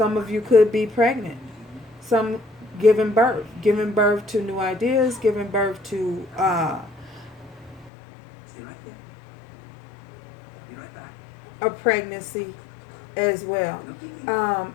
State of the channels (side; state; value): right; drops out; at 7.9 s